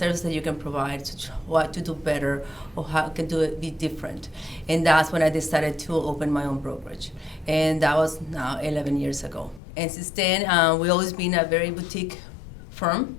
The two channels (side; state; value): right; drops out; at 9.6 s